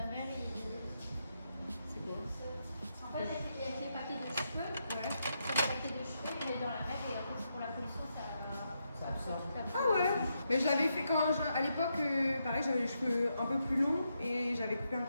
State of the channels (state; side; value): inverted; both; correlation -0.82